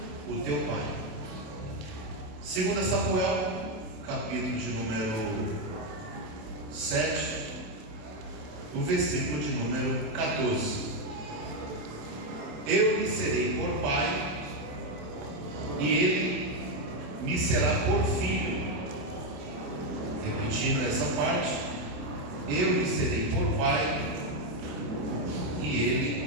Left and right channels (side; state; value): left; late; 27 ms